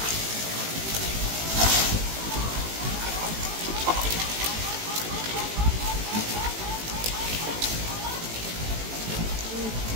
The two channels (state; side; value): late; left; 18 ms